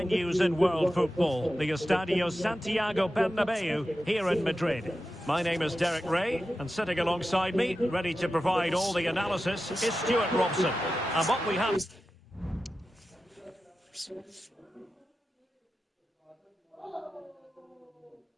in world football, the Estadio Santiago Bernabeu here in Madrid. My name is Derek Ray, and sitting alongside me, ready to provide all the analysis, is Stuart Robson. And what we have...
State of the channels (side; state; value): both; normal; correlation 0.92